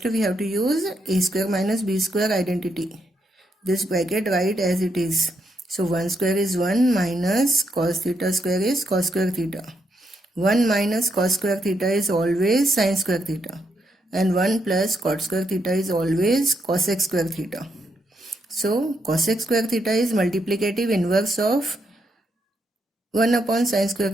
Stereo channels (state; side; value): normal; both; correlation 0.79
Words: we have to use a square minus b square identity. This bracket write as it is. So 1 square is 1 minus cos theta square is cos square theta. 1 minus cos square theta is always sin square theta. And 1 plus cot square theta is always cosec square theta. So cosec square theta is multiplicative inverse of 1 upon sin square